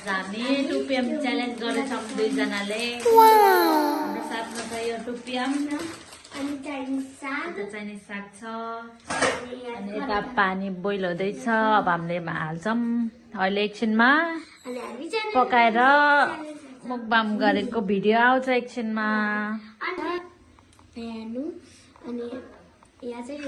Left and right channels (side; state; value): both; identical; correlation 1.00